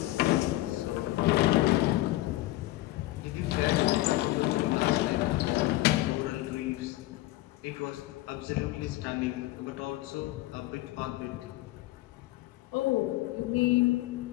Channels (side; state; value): right; quieter; 17.7 dB